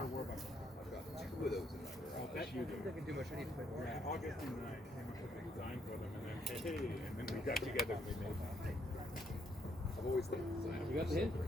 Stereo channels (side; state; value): both; normal; correlation 0.72